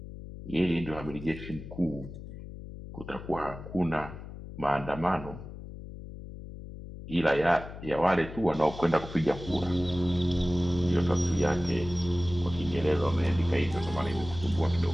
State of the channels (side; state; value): left; noise; hum, 12 dB below the sound